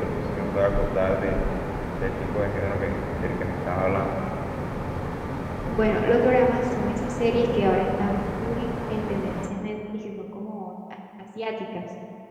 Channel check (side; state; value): both; identical; correlation 1.00